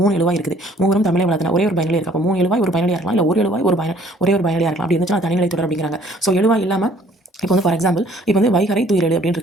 3 எழுவாய் இருக்குது. மூவரும் தமிழை வளர்த்தன ஒரே ஒரு பயனிலை இருக்கு. அப்போ 3 எழுவாய் ஒரு பயனிலையா இருக்கலாம், இல்லை ஒரு எழுவாய் ஒரே ஒரு பயனிலையா இருக்கலாம். அப்படி இருந்துச்சுன்னா தனிநிலை தொடர் அப்படிங்கிறாங்க. எழுவாய் இல்லாமல் இப்போ வந்து ஃபார் எக்ஸாம்பிள் இப்போ வந்து வைகரை துயிரல் அப்படின்னு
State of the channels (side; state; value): both; normal; correlation 0.58